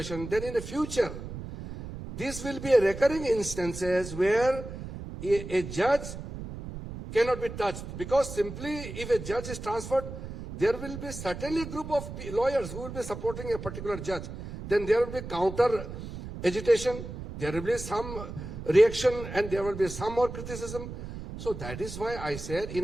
then in the future, this will be a recurring instances where a judge cannot be touched, because simply if a judge is transferred, there will be certainly a group of lawyers who will be supporting a particular judge. Then there will be counter agitation, there will be some reaction, and there will be some more criticism. So that is why I said,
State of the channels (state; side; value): noise; right; rumble, 9 dB below the sound